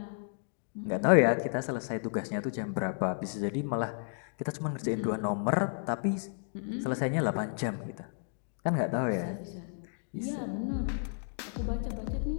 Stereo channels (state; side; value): silent; right; digital silence